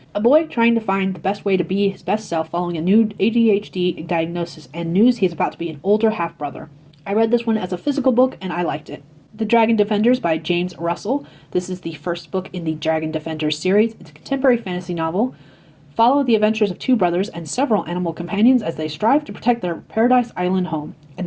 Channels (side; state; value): both; identical; correlation 1.00